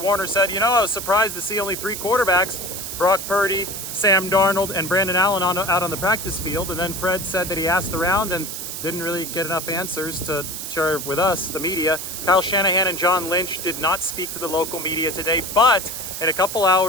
said, I was surprised to see only 3 quarterbacks, Brock Purdy, Sam Darnold, and Brandon Allen out on the practice field. And then Fred said that he asked around and didn't really get enough answers to share with us, the media. Kyle Shanahan and John Lynch did not speak to the local media today, but in a couple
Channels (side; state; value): right; noise; hiss, 6 dB below the sound